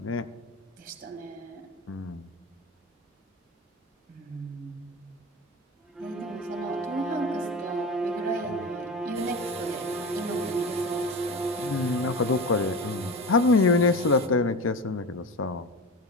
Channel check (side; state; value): both; normal; correlation 0.28